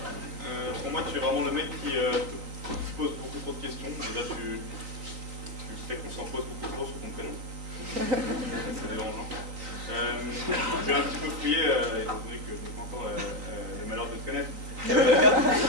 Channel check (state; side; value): late; left; 3.8 ms